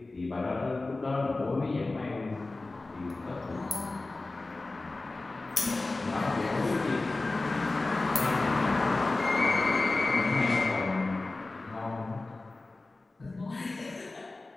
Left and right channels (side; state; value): right; quieter; 3.2 dB